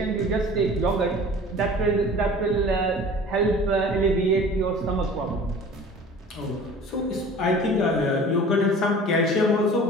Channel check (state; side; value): normal; both; correlation 0.44